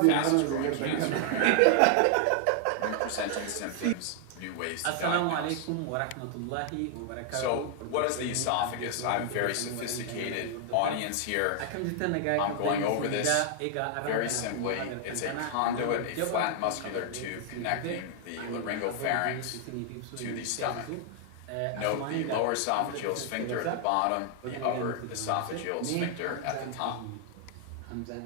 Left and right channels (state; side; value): different; both; correlation 0.00